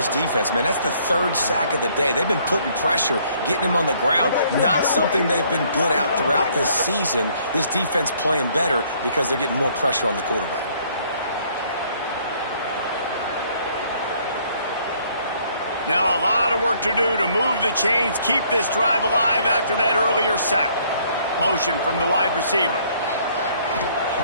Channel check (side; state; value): both; inverted; correlation -0.63